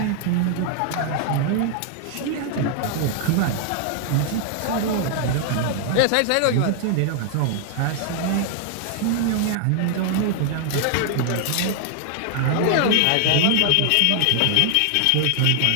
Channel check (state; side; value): different; both; correlation 0.00